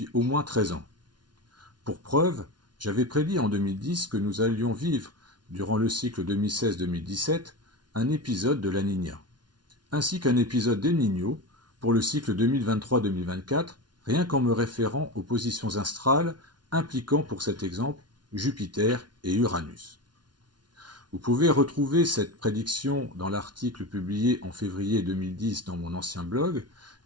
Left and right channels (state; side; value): late; left; 0.70 ms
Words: au moins 13 ans. Pour preuve, j'avais prédit en 2010 que nous allions vivre, durant le cycle 2016-2017, un épisode de la Niña, ainsi qu'un épisode d'El Niño pour le cycle 2023-2024, rien qu'en me référant aux positions astrales impliquant pour cet exemple Jupiter et Uranus. Vous pouvez retrouver cette prédiction dans l'article publié en février 2010 dans mon ancien blog,